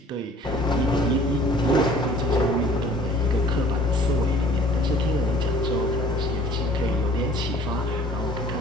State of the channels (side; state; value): both; normal; correlation 0.52